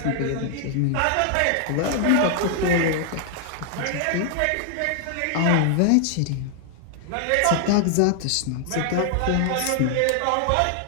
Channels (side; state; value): both; different; correlation 0.00